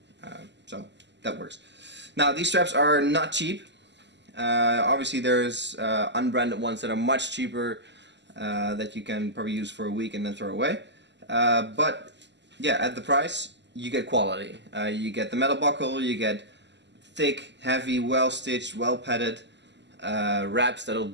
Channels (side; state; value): left; late; 0.51 ms